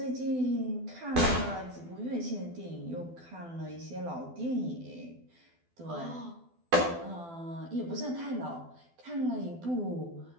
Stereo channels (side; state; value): left; late; 12 ms